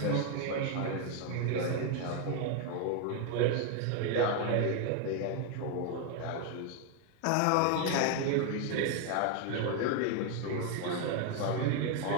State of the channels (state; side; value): different; both; correlation 0.01